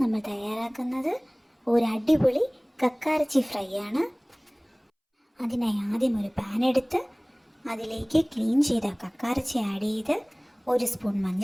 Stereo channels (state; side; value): identical; both; correlation 1.00